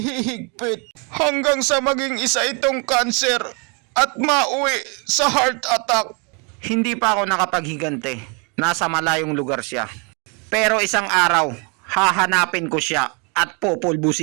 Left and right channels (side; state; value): left; quieter; 33.9 dB